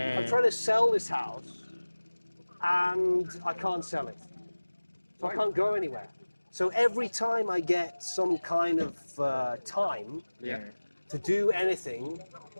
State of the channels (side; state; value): both; inverted; correlation -1.00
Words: trying to sell this house and I can't sell it. So I can't go anywhere. So every time I get some kind of time to do anything,